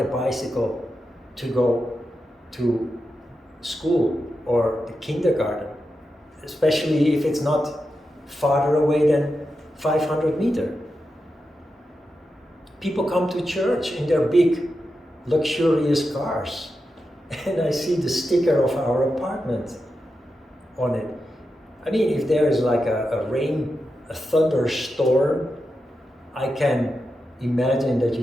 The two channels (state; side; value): normal; both; correlation 0.89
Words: a bicycle to go to school or the kindergarten, especially if it's not farther away than 500 meters. People come to church in their big, luxurious cars, and I see the sticker of our apartment on it. I mean, if there is like a thunderstorm, I can imagine that